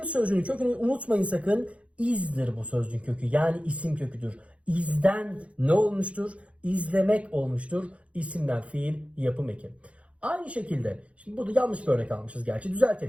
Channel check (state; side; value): late; left; 0.063 ms